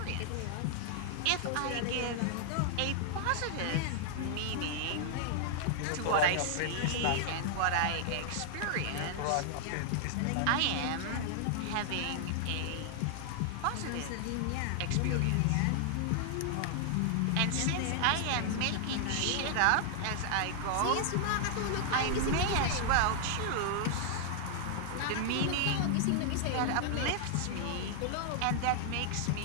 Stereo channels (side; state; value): both; different; correlation -0.01